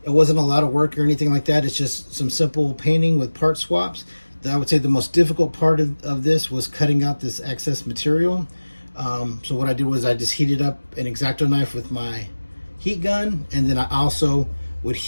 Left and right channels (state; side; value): inverted; both; correlation -1.00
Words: It wasn't a lot of work or anything like that. It's just some simple painting with part swaps. I would say the most difficult part of this was cutting out this excess material. So what I did was I just heated up an X-Acto knife with my heat gun, and then I also would